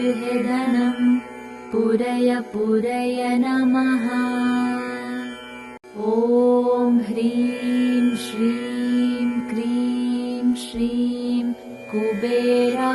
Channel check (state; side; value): identical; both; correlation 1.00